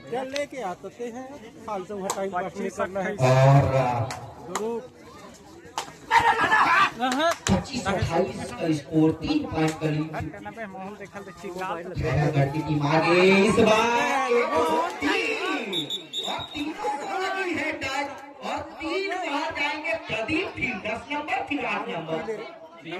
चल लेके आते हैं, फालतू हटाई पास नहीं करना है। और 25-28 का स्कोर, 3 पॉइंट का लीड। माहौल देखल खैरागढ़ की टीम आगे इस बार और तीनों को लगी है टच और 3 बार जाएंगे प्रदीप। फिर 10 नंबर, फिर 8 नंबर,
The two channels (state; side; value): identical; both; correlation 1.00